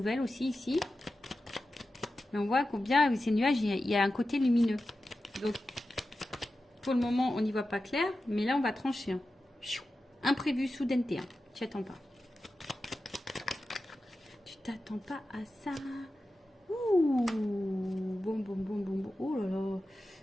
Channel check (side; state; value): both; normal; correlation 0.93